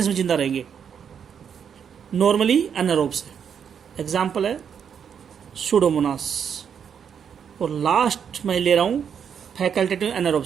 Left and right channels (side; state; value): left; quieter; 7.6 dB